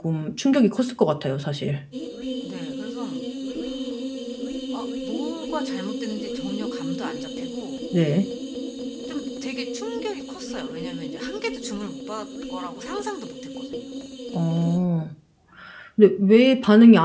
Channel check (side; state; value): both; identical; correlation 1.00